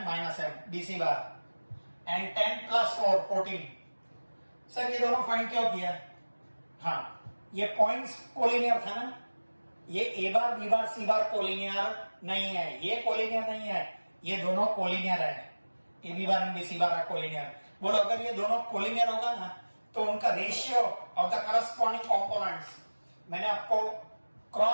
B C bar and 10 + 4 14। Sir ये दोनों फाइंड क्यों किया? हाँ, ये पॉइंट्स कोलिनियर था ना, ये ए bar B bar C bar collinear नहीं है, ये कोलिनियर नहीं है, ये दोनों कोलिनियर है, A B bar and B C bar collinear. बोलो अगर ये दोनों कोलिनियर होगा ना तो उनका ratio of the corresponding components, मैंने आपको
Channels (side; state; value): both; inverted; correlation -1.00